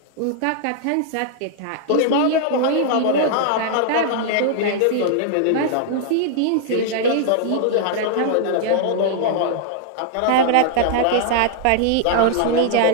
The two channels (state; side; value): different; both; correlation -0.01